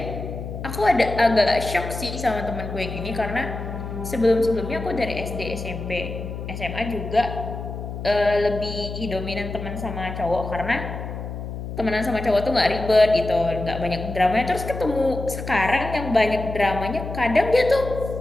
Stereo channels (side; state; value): left; noise; hum, 7 dB below the sound